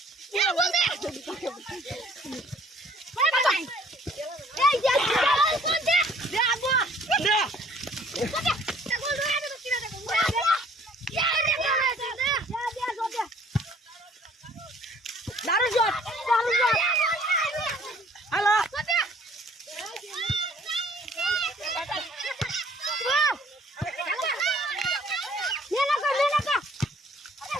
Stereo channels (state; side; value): normal; both; correlation 0.57